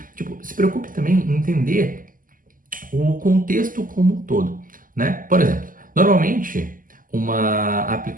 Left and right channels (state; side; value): late; left; 0.40 ms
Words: Tipo, se preocupe também em entender o contexto como um todo, né? Por exemplo, normalmente uma